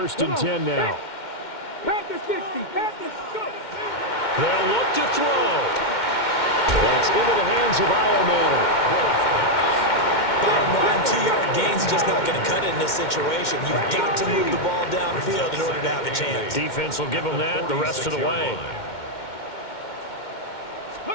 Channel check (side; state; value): right; late; 2.1 ms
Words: and 10 now. Panther 60. Panthers go. They'll look to throw. That's into the hands of Ironman. Bottom line, 2-yard gain's just not going to cut it in this situation. You've got to move the ball downfield in order to have a chance. Defense will give them that the rest of the way.